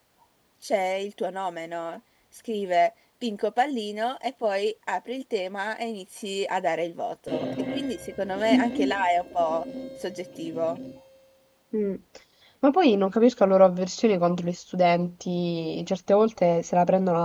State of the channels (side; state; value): both; identical; correlation 1.00